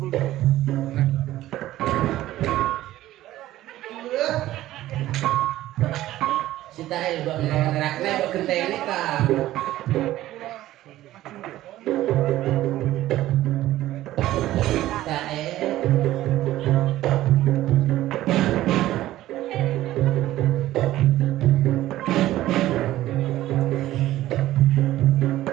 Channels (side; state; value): left; quieter; 14.8 dB